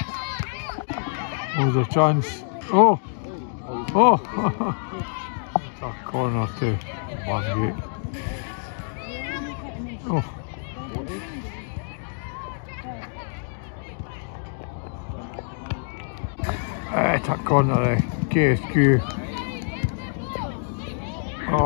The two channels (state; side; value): silent; right; 61 dB below the other